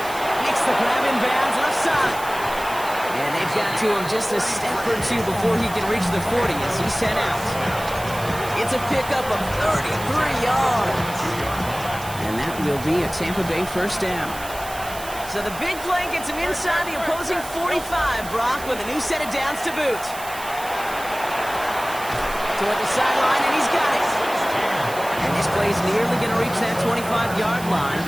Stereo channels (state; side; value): noise; right; hiss, 13 dB below the sound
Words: Makes the grab in bounds left side. And they've got to him just a step or two before he can reach the 40 as he's sent out. It's a pickup of 33 yards. And that will be a Tampa Bay first down. So the big play gets him inside the opposing 45, Brock, with a new set of downs to boot. Toward the sideline, and he's got it. And this play's nearly going to reach that 25-yard line.